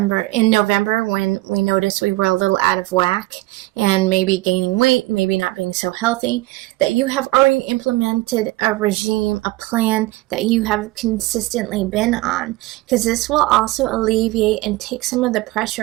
In November, when we noticed we were a little out of whack and maybe gaining weight, maybe not being so healthy, that you have already implemented a regime, a plan that you have consistently been on, because this will also alleviate and take some of the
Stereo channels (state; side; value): quieter; left; 19.6 dB